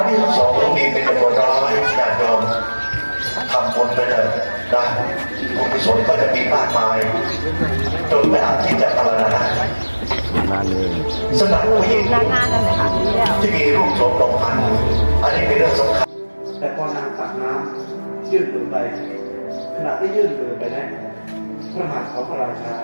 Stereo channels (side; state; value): both; inverted; correlation -1.00